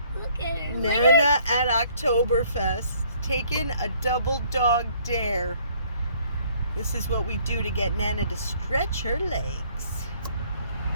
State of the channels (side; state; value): both; inverted; correlation -0.61